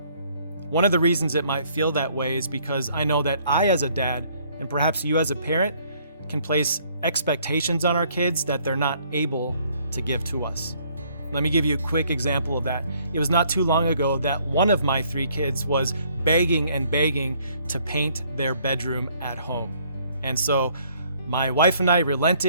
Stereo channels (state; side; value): inverted; both; correlation -0.64